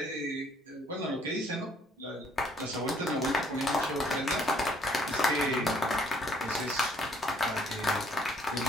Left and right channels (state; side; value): normal; both; correlation 0.64